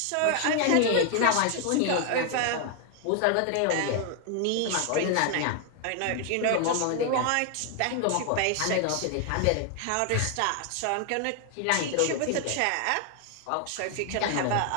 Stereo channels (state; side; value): different; both; correlation 0.00